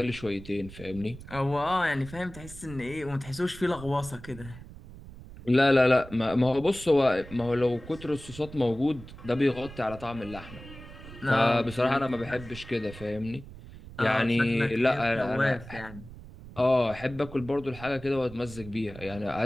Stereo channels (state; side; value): noise; right; rumble, 16 dB below the sound